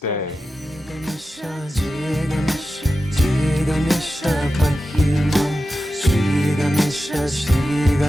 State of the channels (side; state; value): both; normal; correlation 0.92